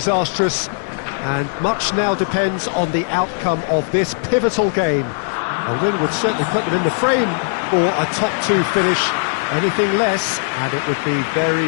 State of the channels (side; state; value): right; silent; digital silence